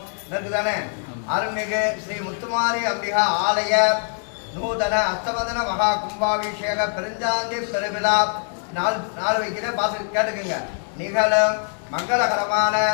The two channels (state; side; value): silent; right; 57 dB below the other